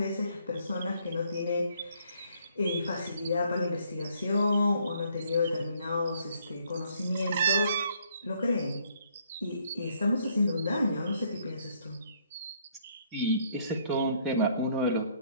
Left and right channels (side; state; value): both; inverted; correlation -0.67